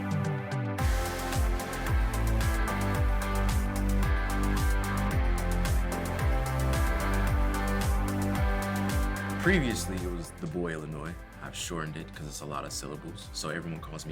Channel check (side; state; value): both; identical; correlation 1.00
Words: Previously, it was the boy Illinois. I've shortened it because it's a lot of syllables, so everyone calls